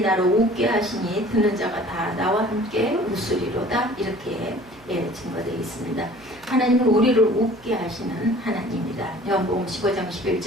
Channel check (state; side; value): noise; right; hum, 25 dB below the sound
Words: 나로 웃게 하시니 듣는 자가 다 나와 함께 웃으리로다. 이렇게 증거되어 있습니다. 하나님은 우리를 웃게 하시는 하나님입니다. 요한복음 15장